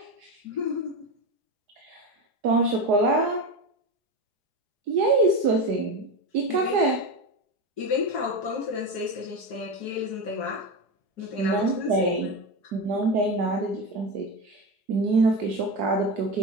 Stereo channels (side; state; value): left; late; 4.8 ms